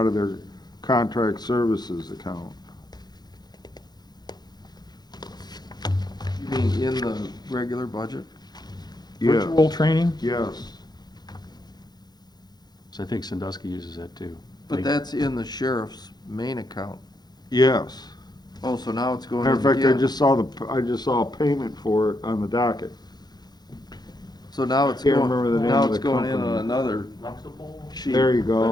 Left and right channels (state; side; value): late; right; 0.20 ms